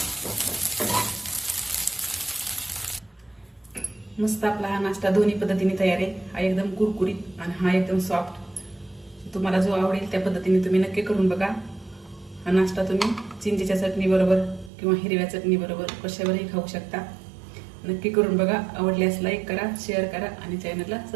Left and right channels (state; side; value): drops out; left; at 14.7 s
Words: मस्त आपला हा नाश्ता दोन्ही पद्धतीने तयार आहे. हा एकदम कुरकुरीत आणि हा एकदम सॉफ्ट. तुम्हाला जो आवडेल त्या पद्धतीने तुम्ही नक्की करून बघा. हा नाश्ता तुम्ही चिंचेच्या चटणी बरोबर किंवा हिरव्या चटणी बरोबर कशावरही खाऊ शकता. नक्की करून बघा. आवडल्यास लाईक करा, शेअर करा आणि चॅनलला